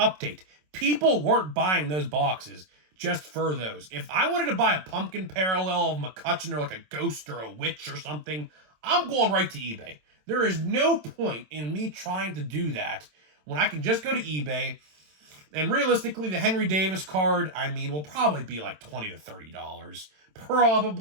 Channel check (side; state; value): left; late; 27 ms